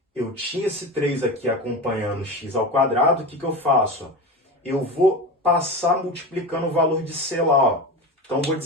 Eu tinha esse 3 aqui acompanhando x ao quadrado, o que eu faço? Eu vou passar multiplicando o valor de c lá. Então, vou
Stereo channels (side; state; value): both; normal; correlation 0.25